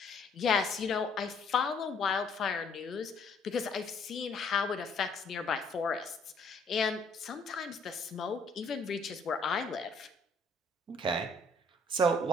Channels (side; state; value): right; quieter; 3.0 dB